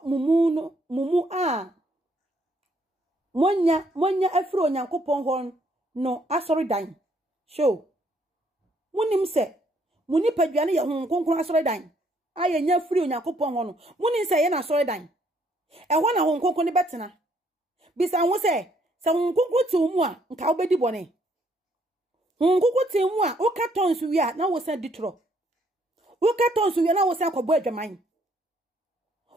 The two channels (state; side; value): normal; both; correlation 0.68